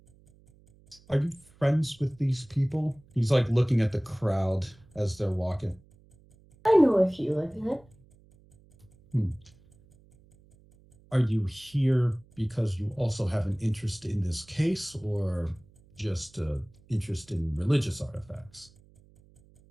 Are you friends with these people? He's like looking at the crowd as they're walking. I know a few like that. Are you here because you also have an interest in this case, or just interest in religious artifacts?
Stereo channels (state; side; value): noise; right; hum, 28 dB below the sound